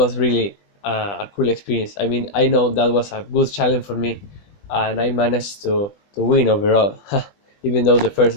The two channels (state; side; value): late; right; 20 ms